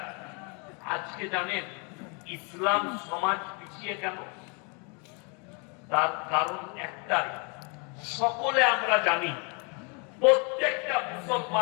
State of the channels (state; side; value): quieter; right; 34.2 dB